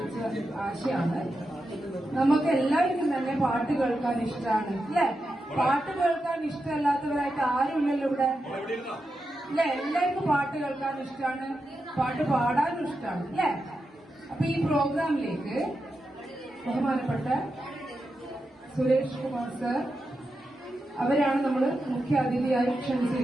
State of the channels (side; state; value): both; normal; correlation 0.88